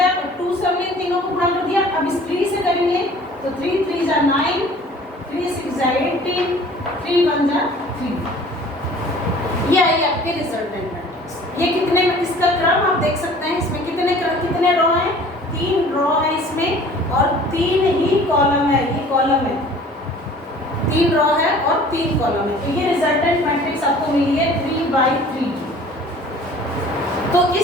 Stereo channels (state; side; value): normal; both; correlation 0.49